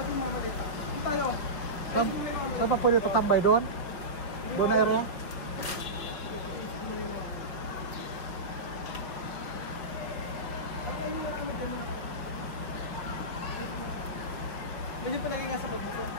mga malita. Saan tayo? Saan pa pwede tatambay doon? Doon na area? Medyo palagay nga sa bag mo ko.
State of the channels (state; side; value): late; right; 5.5 ms